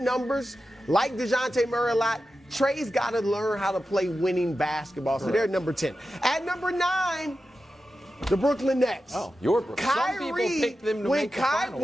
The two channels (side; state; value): both; normal; correlation 0.92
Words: like DeJounte Murray a lot. Trae's got to learn how to play winning basketball. So they're number 10. At number 9, the Brooklyn Nets. Oh, your Brooklyn. Kyrie, Some people picked them to make the finals.